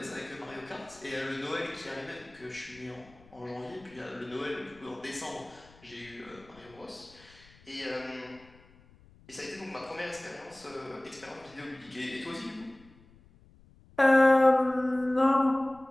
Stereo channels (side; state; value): left; noise; rumble, 26 dB below the sound